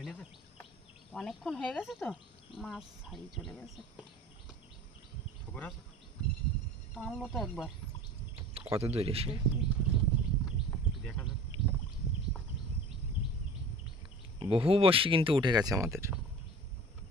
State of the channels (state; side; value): normal; both; correlation 0.41